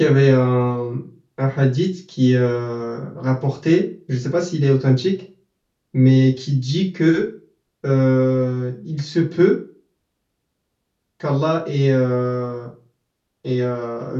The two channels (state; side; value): identical; both; correlation 1.00